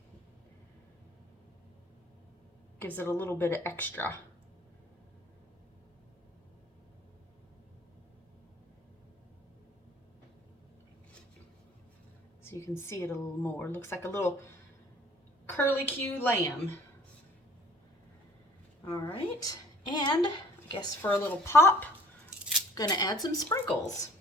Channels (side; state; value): both; normal; correlation 0.53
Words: Gives it a little bit of extra. So you can see it a little more. Looks like a little curly-Q lamb. All right, and I guess for a little pop, I'm gonna add some sprinkles.